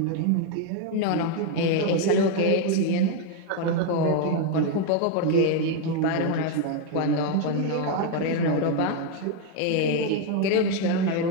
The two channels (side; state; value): both; different; correlation 0.01